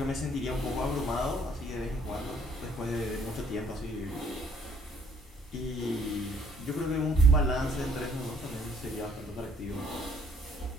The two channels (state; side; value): normal; both; correlation 0.63